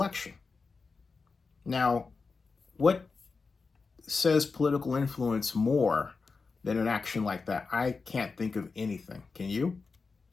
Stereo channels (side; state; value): right; quieter; 4.5 dB